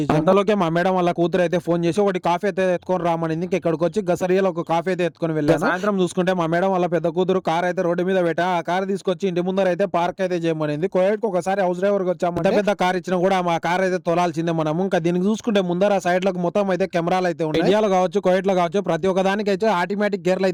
అంతలోకే మా మేడం వాళ్ళ కూతురు అయితే ఫోన్ చేసి ఒకటి కాఫీ అయితే ఎత్తుకొని రామనింది. ఇంకా ఇక్కడికి వచ్చి గసరియాలో ఒక కాఫీ అయితే ఎత్తుకొని వెళ్ళాను. సాయంత్రం చూసుకుంటే మా మేడం వాళ్ళ పెద్ద కూతురు కార్ అయితే రోడ్డు మీద పెట్టా. ఆ కార్ తీసుకొచ్చి ఇంటి ముందర అయితే పార్క్ అయితే చేయమనింది. కోయట్కి ఒకసారి హౌస్ డ్రైవర్ వచ్చామంటే పెద్ద కార్ ఇచ్చినా కూడా మా కార్ అయితే తోలాల్సిందే మనము. ఇంకా దీనికి చూసుకుంటే ముందర సైడ్ లకు మొత్తం అయితే కెమెరాలు అయితే ఉన్నాయి. ఇండియాలో కావచ్చు, కోయట్ లో కావచ్చు, ప్రతి ఒక్క దానికి అయితే ఆటోమేటిక్ గేర్లు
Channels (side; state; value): both; identical; correlation 1.00